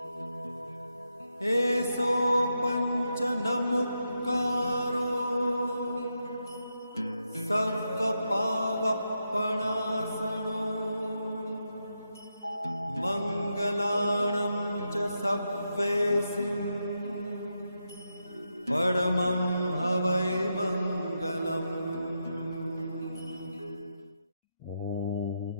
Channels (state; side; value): inverted; both; correlation -0.85